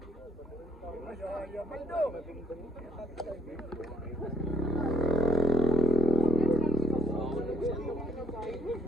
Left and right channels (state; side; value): normal; both; correlation 0.69